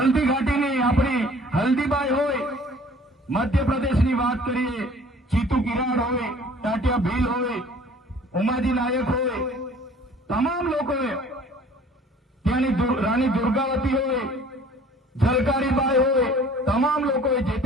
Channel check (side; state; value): both; normal; correlation 0.51